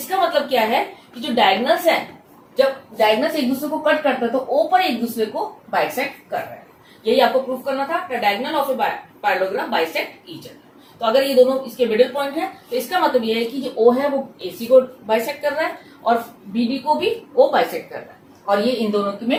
मतलब क्या है कि जो डायगोनल्स हैं, जब डायगोनल्स एक दूसरे को कट करता है तो O पर एक दूसरे को बाइसेक्ट कर रहा है। यही आपको प्रूफ करना था। The diagonal of a parallelogram bisect each other. तो अगर ये दोनों इसके मिडिल पॉइंट है तो इसका मतलब ये है कि जो O है वो AC को बाइसेक्ट कर रहा है और BD को भी O बाइसेक्ट कर रहा है, और ये इन दोनों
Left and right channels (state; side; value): identical; both; correlation 1.00